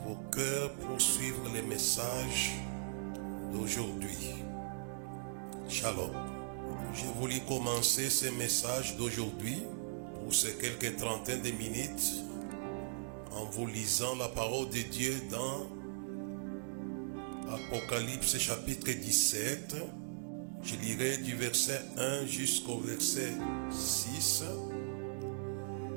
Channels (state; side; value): silent; left; digital silence